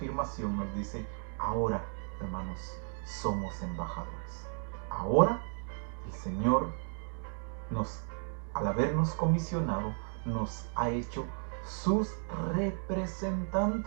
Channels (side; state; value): left; silent; 55 dB below the other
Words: nos dice: ahora, hermanos, somos embajadores. Ahora el Señor, al habernos comisionado, nos ha hecho sus